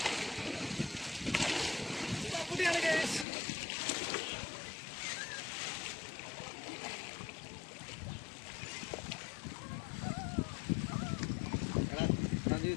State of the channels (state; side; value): drops out; right; at 3.2 s